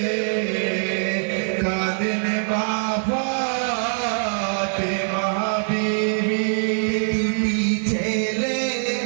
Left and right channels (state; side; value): silent; left; digital silence